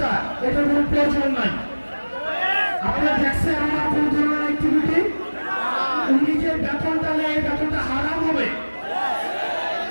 এটার কোনো প্রয়োজন নাই। আপনারা দেখছেন আমার কোন ধরনের অ্যাক্টিভিটি? উনি যে বেতনটা নেয়, এই বেতনটা হারাম হবে।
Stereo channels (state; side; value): inverted; both; correlation -1.00